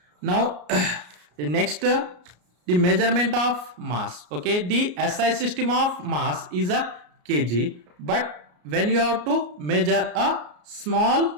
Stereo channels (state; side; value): late; left; 33 ms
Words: Now the next the measurement of mass. Okay, the SI system of mass is a kg, but when you have to measure a